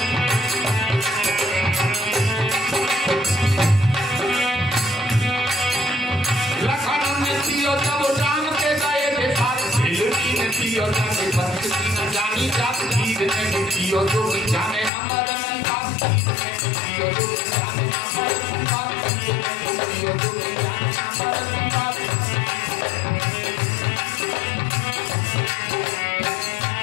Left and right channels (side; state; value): right; drops out; at 14.9 s